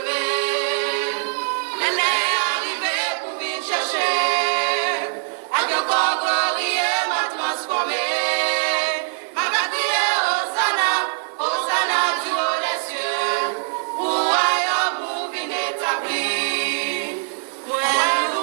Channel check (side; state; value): left; silent; digital silence